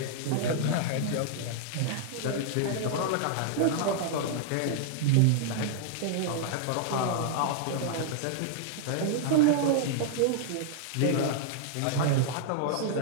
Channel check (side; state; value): both; different; correlation -0.01